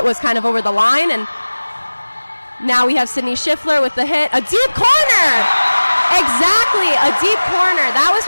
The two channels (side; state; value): both; inverted; correlation -1.00